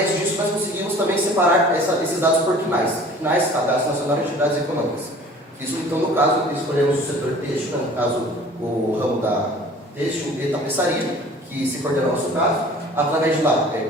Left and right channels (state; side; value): normal; both; correlation 0.48